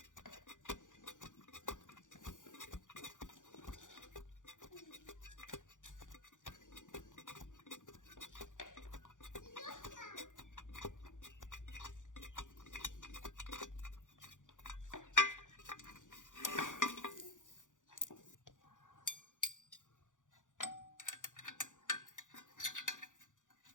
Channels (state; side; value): late; right; 0.87 ms